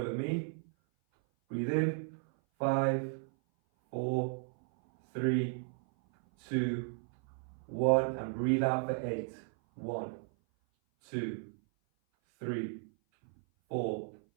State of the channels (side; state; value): left; silent; 55 dB below the other